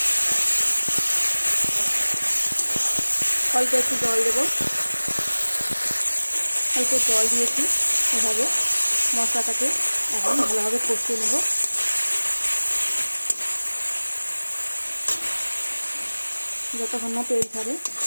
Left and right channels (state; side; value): inverted; both; correlation -1.00